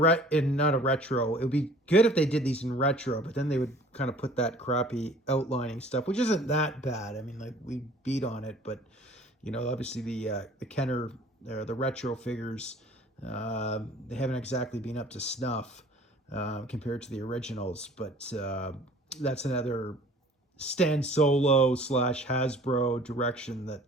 not a retro, it would be good if they did these in retro, but then they would kind of put that crappy outlining stuff, which isn't that bad. I mean, like we beat on it, but obviously the Kenner or the retro figures, they haven't exactly been up to snuff compared to the originals. But that's another Stan Solo / Hasbro direction that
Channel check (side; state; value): both; normal; correlation 0.50